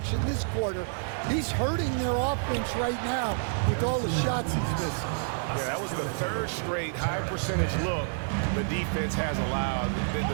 this quarter. He's hurting their offense right now with all the shots he's missing. Yeah, that was the 3rd straight high percentage look the defense has allowed. The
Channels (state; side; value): silent; left; 56 dB below the other